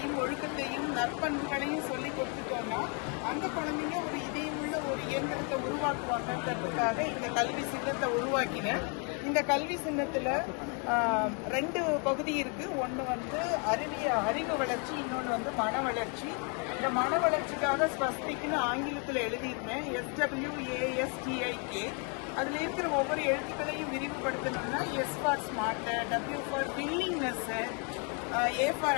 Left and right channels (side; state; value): right; quieter; 37.1 dB